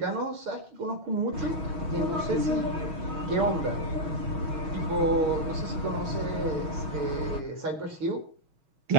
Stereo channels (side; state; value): left; late; 6.3 ms